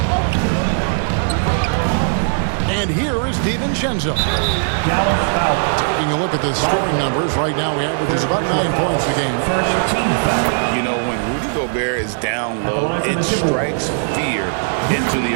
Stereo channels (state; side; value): silent; left; digital silence